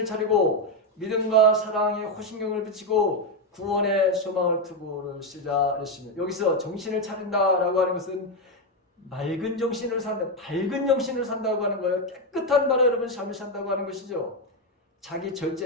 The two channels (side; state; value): both; normal; correlation 0.06